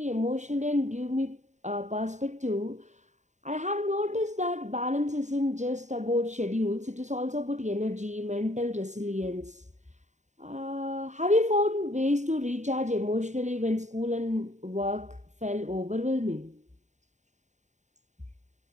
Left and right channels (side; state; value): left; late; 0.34 ms